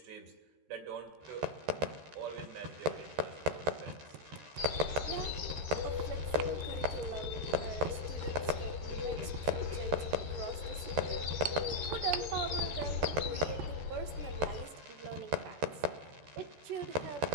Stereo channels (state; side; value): late; left; 13 ms